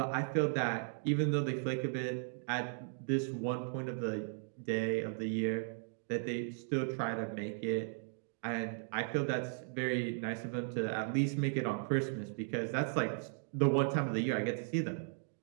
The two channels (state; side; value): silent; left; digital silence